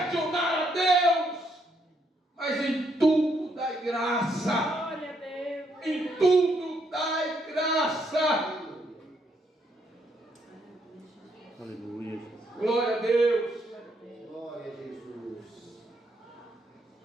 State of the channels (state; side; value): normal; both; correlation 0.74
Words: a Deus. Mas em tudo dai graça. Glória a Deus. Em tudo dai graça. Aleluia. Glória a Deus. Glória a Jesus.